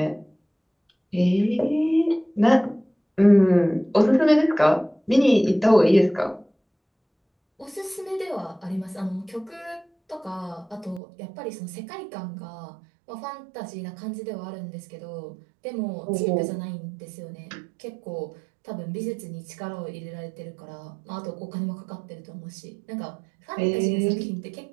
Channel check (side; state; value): left; drops out; at 11.0 s